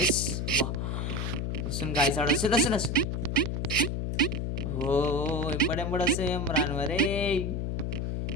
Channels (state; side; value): noise; left; hum, 1 dB below the sound